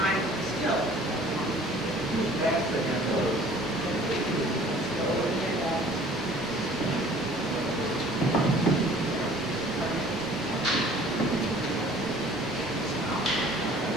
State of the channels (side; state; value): both; normal; correlation 0.52